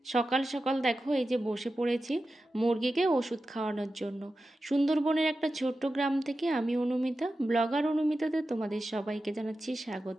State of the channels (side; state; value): both; normal; correlation 0.92